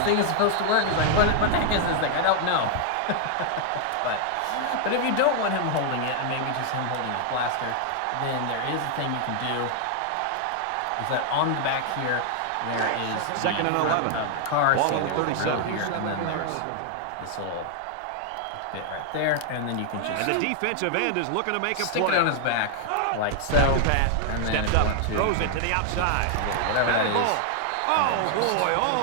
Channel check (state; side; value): different; both; correlation 0.00